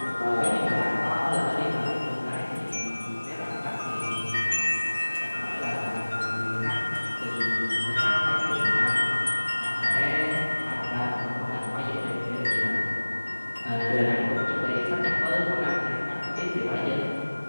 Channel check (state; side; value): inverted; both; correlation -1.00